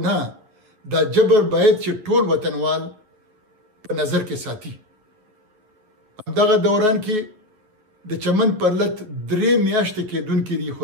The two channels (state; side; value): late; left; 9.4 ms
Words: نه، دا جبر باید چې ټول وطنوال په نظر کې ساتي. همدغه دوران کې د چمن پرلت 3 میاشتې کېدونکې دي، خو